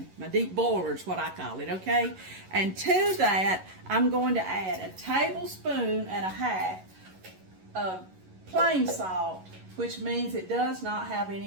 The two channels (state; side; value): late; left; 11 ms